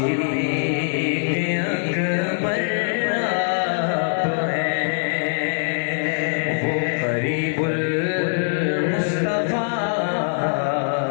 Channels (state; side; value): silent; right; digital silence